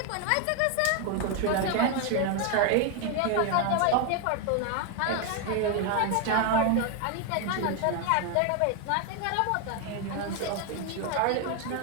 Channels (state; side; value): different; both; correlation 0.01